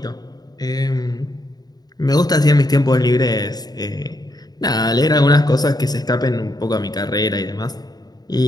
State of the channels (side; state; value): right; late; 0.19 ms